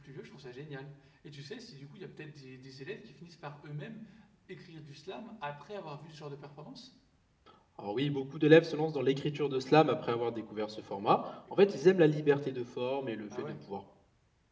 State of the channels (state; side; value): identical; both; correlation 1.00